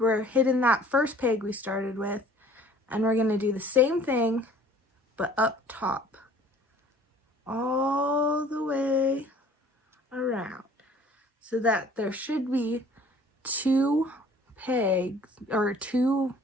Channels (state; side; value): normal; both; correlation 0.52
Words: hitting that first peg we started with, and we're going to do the same thing, but up top, all the way around, so that there should be two pegs, or two